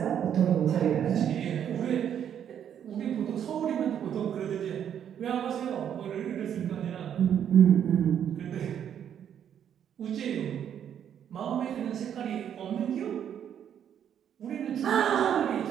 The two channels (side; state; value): left; quieter; 9.2 dB